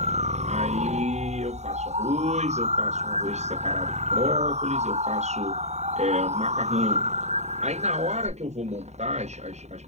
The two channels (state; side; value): late; left; 0.32 ms